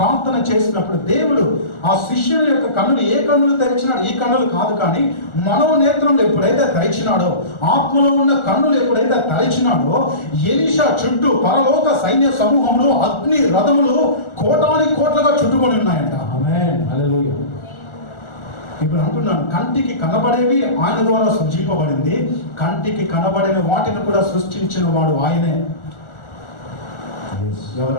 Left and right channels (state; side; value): late; right; 1.4 ms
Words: చేసినప్పుడు దేవుడు ఆ శిష్యుని యొక్క కన్నులు, ఏ కన్నులు తెరిచినాడు? ఈ కన్నులు కాదు, కానీ మనోనేత్రంలో ఎప్పుడైతే తెరిచినాడో, ఆత్మలో ఉన్న కన్నులు ఎప్పుడైతే తెరిచినాడో, ఎలీషా చుట్టూ పరలోక సైన్య సమూహంలో అగ్ని రథములు కోటాని కోట్లుగా చుట్టుకొని ఉన్నాయంట. ఆమేన్, హల్లెలూయా. ఇప్పుడు అంటున్నాను, కంటికి కనబడేవి ఆయన ద్వారా సృజింపబడింది, కంటికి కనబడిన వాటిని కూడా సృష్టించిన వాడు ఆయనే.